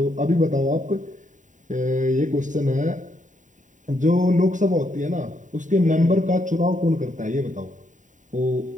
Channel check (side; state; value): left; late; 0.36 ms